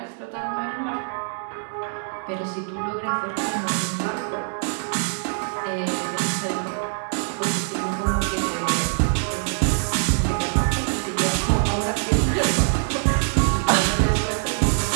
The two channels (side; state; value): left; silent; 63 dB below the other